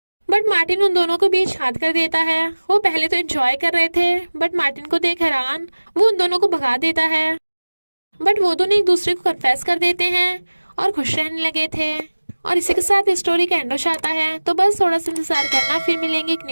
बट मार्टिन उन दोनों को बीच हाथ कर देता है। वो पहले तो एंजॉय कर रहे थे, बट मार्टिन को देख हैरान वो उन दोनों को भगा देता है। बट वो दोनों एक दूसरे को कन्फेस कर देते हैं और खुश रहने लगे थे। और इसी के साथ स्टोरी का एंड हो जाता है। तो बस थोड़ा सा इंतजार करना, फिर मिलेंगे एक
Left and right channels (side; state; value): both; inverted; correlation -1.00